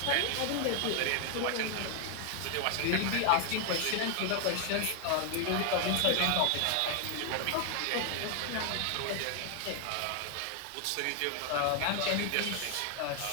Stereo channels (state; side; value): different; both; correlation 0.00